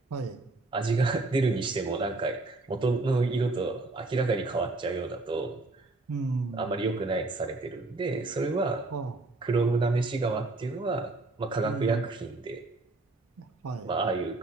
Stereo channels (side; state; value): left; quieter; 3.1 dB